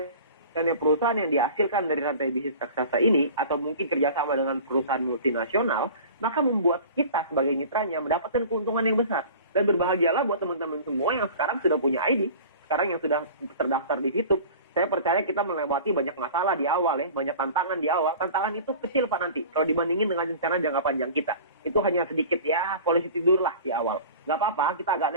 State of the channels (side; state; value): both; inverted; correlation -0.40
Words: perusahaan yang dihasilkan dari rantai bisnis raksasa ini, atau mungkin kerjasama dengan perusahaan multinasional, maka membuat kita sebagai mitranya mendapatkan keuntungan yang besar. Dan berbahagialah buat teman-teman semua yang sekarang sudah punya ID, sekarang yang sudah terdaftar di VTube. Saya percaya kita melewati banyak masalah di awal ya, banyak tantangan di awal. Tantangan itu kecil, Pak, nanti. Kalau dibandingin dengan rencana jangka panjang kita. Itu hanya sedikit ya, polisi tidur lah di awal. Nggak apa-apa, kita agak